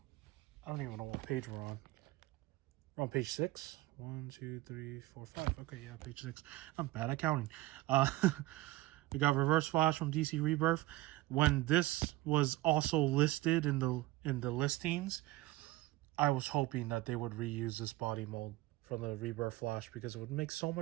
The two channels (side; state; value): left; quieter; 17.7 dB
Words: I don't even know what page we're on. We're on page 6. 1, 2, 3, 4, 5. Okay, yeah, page 6. I'm bad at counting. We got Reverse Flash from DC Rebirth. When this was also listed in the listings, I was hoping that they would reuse this body mold from the Rebirth Flash because it would make so